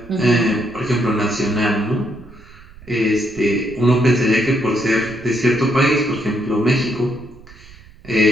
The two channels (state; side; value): noise; right; rumble, 21 dB below the sound